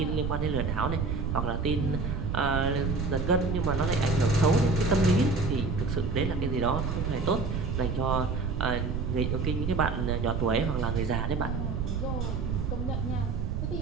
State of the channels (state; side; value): noise; right; rumble, 1 dB below the sound